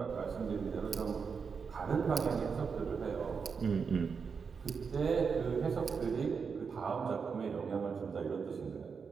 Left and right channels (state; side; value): quieter; left; 5.7 dB